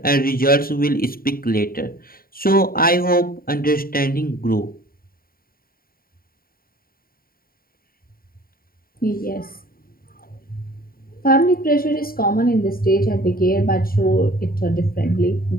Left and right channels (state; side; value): late; right; 0.43 ms